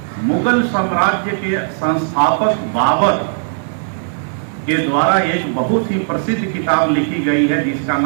मुगल साम्राज्य के संस्थापक बाबर के द्वारा एक बहुत ही प्रसिद्ध किताब लिखी गई है जिसका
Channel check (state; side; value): silent; left; digital silence